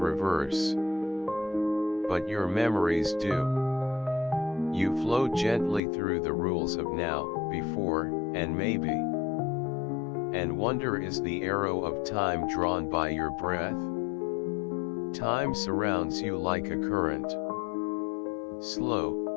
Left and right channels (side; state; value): right; drops out; at 5.8 s